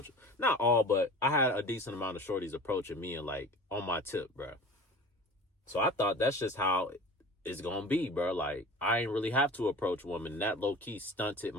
Not all, but I had a decent amount of shorties approaching me and like on my tip, bro. So I thought that's just how it's gonna be, bro. Like, I ain't really have to approach women. That low-key stunted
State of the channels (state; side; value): normal; both; correlation 0.39